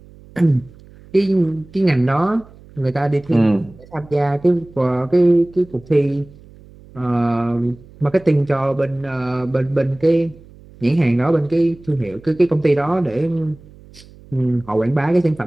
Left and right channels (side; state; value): right; noise; hum, 23 dB below the sound